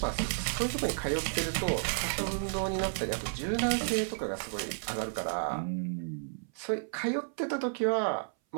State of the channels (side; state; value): left; silent; 56 dB below the other